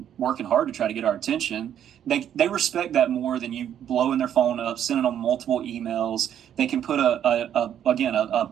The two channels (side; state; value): left; quieter; 9.9 dB